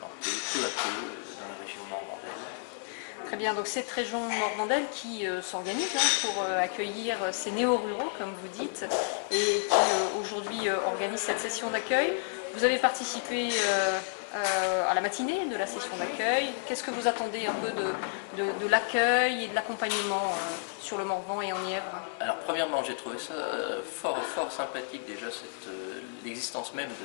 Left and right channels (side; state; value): right; silent; digital silence